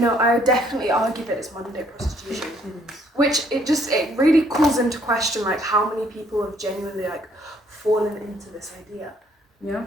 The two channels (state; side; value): normal; both; correlation 0.65